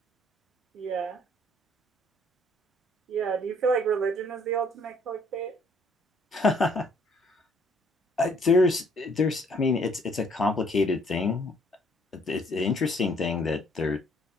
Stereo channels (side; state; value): both; normal; correlation 0.63